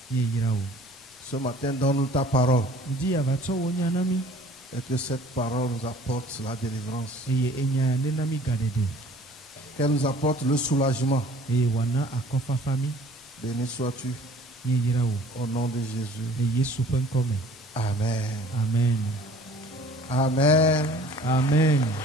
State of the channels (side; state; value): both; normal; correlation 0.50